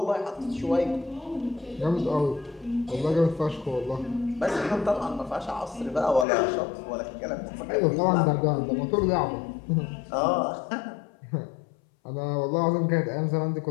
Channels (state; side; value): drops out; right; at 6.2 s